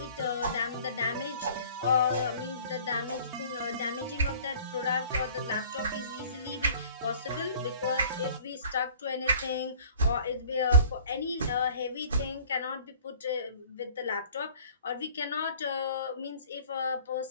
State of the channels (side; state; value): both; inverted; correlation -0.50